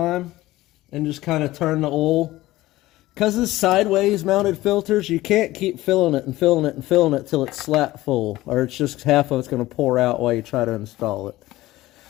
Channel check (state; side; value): quieter; right; 17.2 dB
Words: and just kind of turn the oil. Because it's sideways mounted filters, you can't keep filling it and filling it and filling it till it's slap full, or it's just half of it's going to pour out while you try to install it.